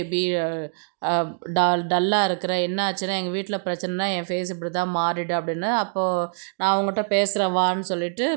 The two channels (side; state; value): left; silent; digital silence